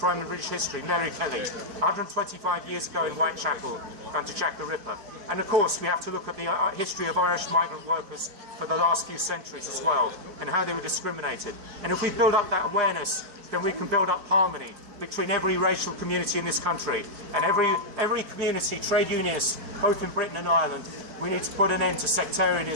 in British history, Mary Kelly, 125 years ago in Whitechapel under Jack the Ripper. And of course we have to look at the history of Irish migrant workers for the last few centuries as well, and how they were discriminated. And if we build up that awareness, then we can build up harmony between every racial community in this country and every community, trade unionists, both in Britain and Ireland. We need to put an end to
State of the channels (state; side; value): late; left; 4.5 ms